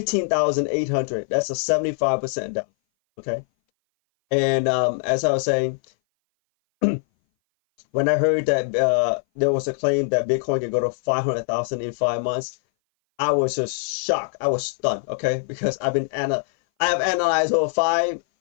That's a 75% down. Okay, and as I was saying, when I heard that there was a claim that Bitcoin could go to 500,000 in 5 months, I was just shocked. I was stunned. Okay, because I have analyzed over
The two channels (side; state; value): right; silent; 59 dB below the other